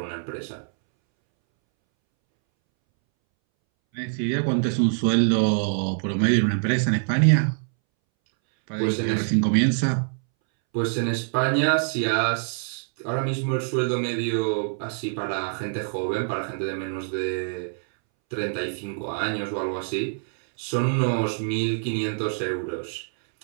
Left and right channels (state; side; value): silent; left; 62 dB below the other